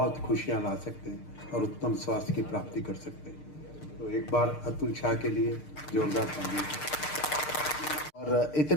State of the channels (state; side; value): late; right; 6.6 ms